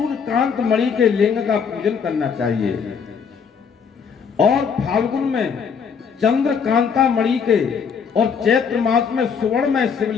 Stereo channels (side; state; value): right; quieter; 6.4 dB